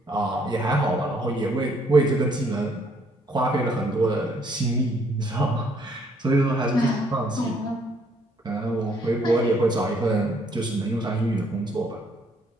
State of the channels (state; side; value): normal; both; correlation 0.66